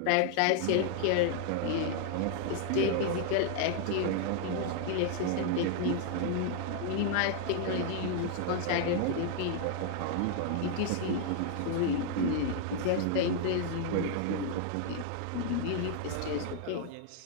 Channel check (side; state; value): both; different; correlation 0.00